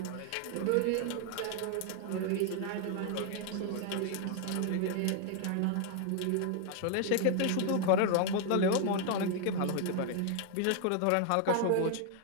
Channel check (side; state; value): both; different; correlation 0.00